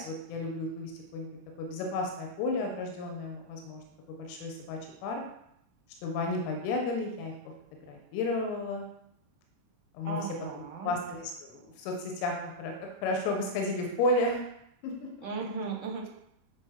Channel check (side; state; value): right; late; 22 ms